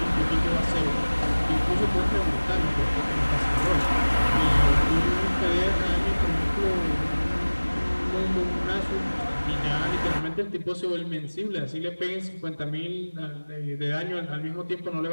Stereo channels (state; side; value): inverted; both; correlation -1.00